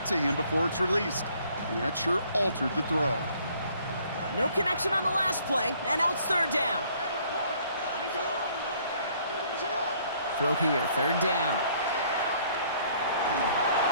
to him before it's released. And that sure altered the throw. No connection on the last play, and now it's third down. Throw here, third down.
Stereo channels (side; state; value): both; inverted; correlation -0.61